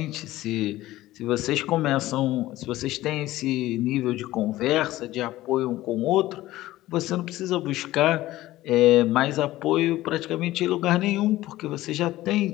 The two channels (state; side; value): quieter; right; 16.3 dB